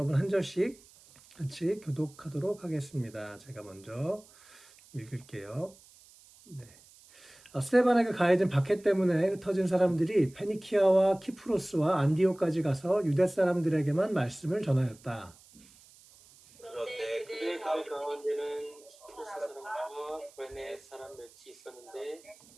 한 절씩 같이 교독하도록 하겠습니다. 제가 먼저 읽을게요. 네. 스테반에게 가해진 박해 때문에 흩어진 사람들이 페니키아와 키프로스와 안디오까지 가서 유대 사람들에게만 말씀을 전하였다. 그런데 그들의 가운데는 키프로스 사람과 구레네 사람 몇이 있었는데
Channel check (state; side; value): noise; right; hiss, 25 dB below the sound